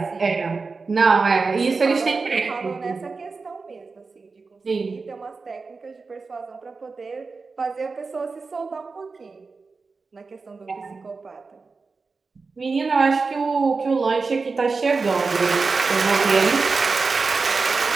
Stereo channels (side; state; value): left; quieter; 4.3 dB